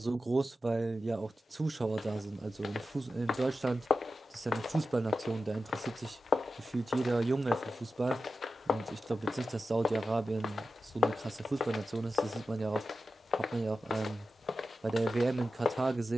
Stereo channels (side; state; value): both; normal; correlation 0.91